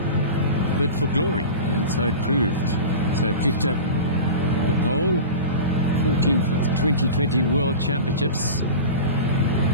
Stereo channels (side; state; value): both; inverted; correlation -0.31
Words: bid for glory, and so it proved. So picked up the pole, 14th of the 2020 World Championships.